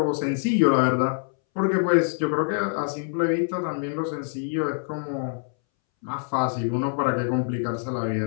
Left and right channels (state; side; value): silent; right; 62 dB below the other